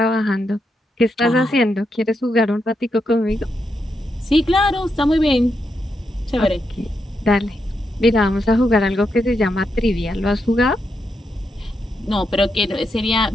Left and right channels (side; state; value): both; normal; correlation 0.83